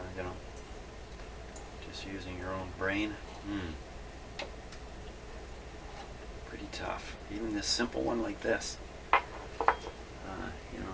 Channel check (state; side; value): identical; both; correlation 1.00